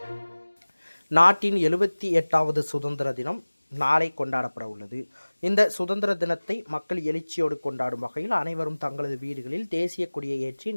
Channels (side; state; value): both; inverted; correlation -1.00